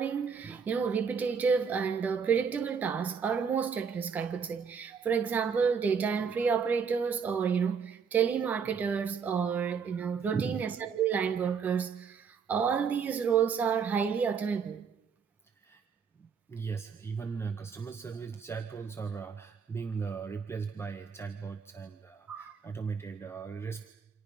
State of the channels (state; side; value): quieter; left; 6.2 dB